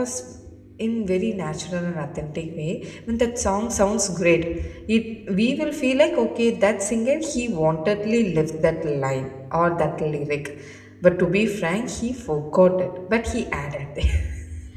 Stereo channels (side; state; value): both; identical; correlation 1.00